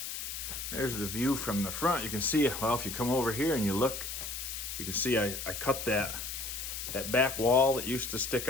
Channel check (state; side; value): noise; left; hiss, 6 dB below the sound